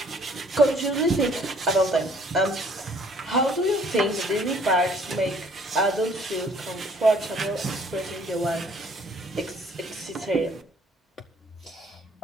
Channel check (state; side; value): normal; both; correlation 0.59